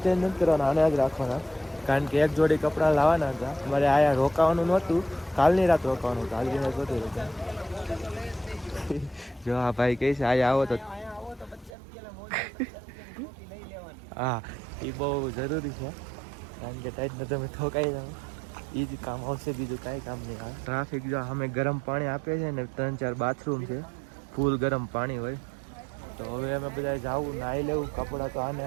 ચેન્જ નથી કરવાના, આને જ રાખવાના. કારણ કે એક જોડી કપડાં લાવવાના હતા. મારે આયા રોકાવાનું નહોતું, કાલની રાત રોકાવાનું હતું. આજની રાત નહોતું રોકાવાનું. જો આ ભાઈ કહે છે આયા આવો તો હા એ બહુ જરૂરી છે. કારણ કે ટાઈટને તમે ઠોકાઈ જાઓ એ જ કામ આવશે, બીજું કાંઈ કામ નહીં આવે. ટ્રાફિક જો અમે ગરમ પાણી આપે છે ને 3-4 બાથરૂમ છે, ફૂલ ગરમ પાણી હોય. તો હવે અમે બધા જાવું, નાહી લેવું, કપડાં તો આને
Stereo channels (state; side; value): drops out; left; at 11.7 s